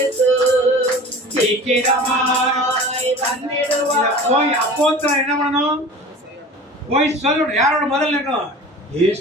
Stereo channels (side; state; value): both; normal; correlation 0.39